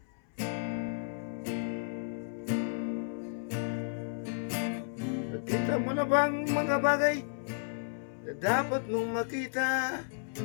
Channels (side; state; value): right; silent; 56 dB below the other